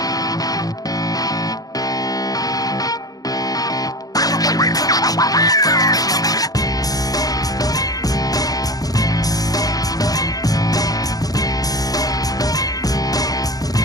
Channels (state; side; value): late; right; 0.18 ms